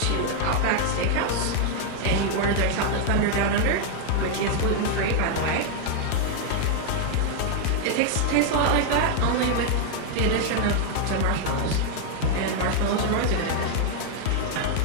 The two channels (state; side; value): different; both; correlation 0.00